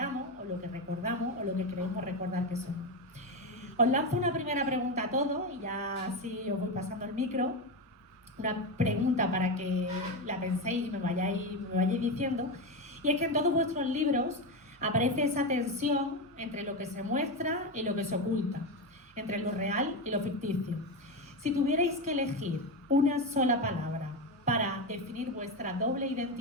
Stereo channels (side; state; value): both; normal; correlation 0.14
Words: o lo que recordamos o lo que creemos recordar que somos. Os lanzo una primera pregunta a todos y ya así os voy pasando el micro. una pregunta para que la penséis y me vayáis diciendo, y es que en todos vuestros libros aparece esa tensión entre lo que se muestra y lo que se oculta, entre lo real y lo ficticio. Si tuvierais que elegir una sola palabra para definir vuestra doble